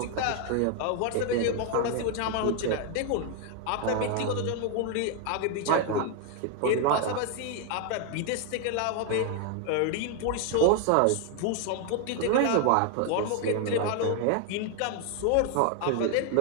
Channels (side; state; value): both; different; correlation 0.00